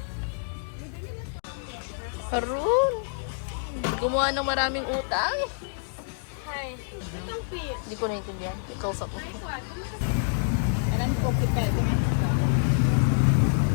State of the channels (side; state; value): right; silent; digital silence